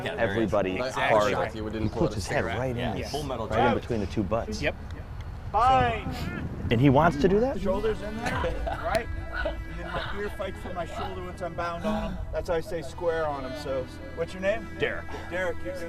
at everybody Exactly. hard. You didn't pull Puts his head right in, Yeah, full metal right in jacket. between the two butts. Yep. Fine. And he wants to do that? Shoulders in there, right? And then my ear fights for my shoulder once I'm bound on him. That's how I stay square on him. So, what's your name? Derek. Derek, you're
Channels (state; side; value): identical; both; correlation 1.00